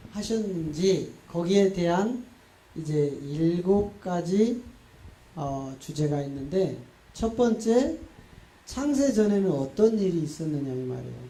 하셨는지 거기에 대한 이제 7가지 주제가 있는데, 첫 번째, 창세 전에는 어떤 일이 있었느냐 이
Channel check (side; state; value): both; identical; correlation 1.00